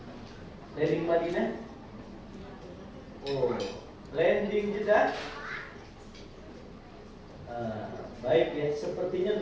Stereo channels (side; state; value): both; identical; correlation 1.00